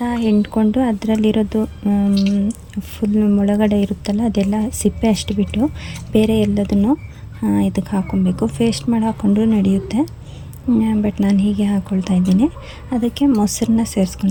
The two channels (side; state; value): both; identical; correlation 1.00